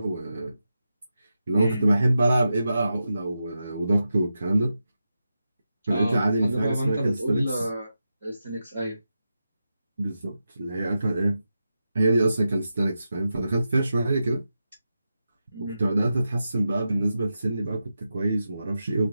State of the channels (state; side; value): inverted; both; correlation -0.89